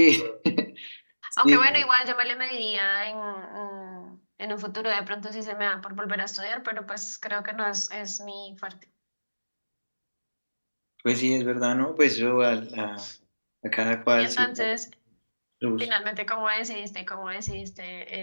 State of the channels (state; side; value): inverted; both; correlation -1.00